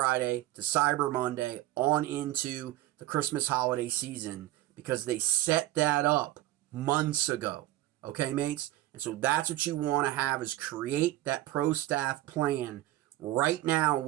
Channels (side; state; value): left; quieter; 15.6 dB